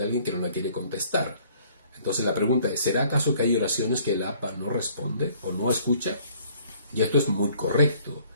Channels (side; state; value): both; inverted; correlation -0.58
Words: alguien que no la quiere contestar. Entonces la pregunta es: ¿será acaso que hay oraciones que el Abba no responde o no escucha? Y esto es muy correcto.